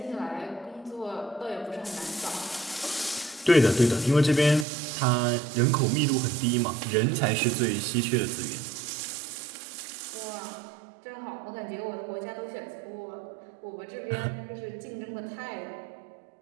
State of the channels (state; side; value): drops out; left; at 4.7 s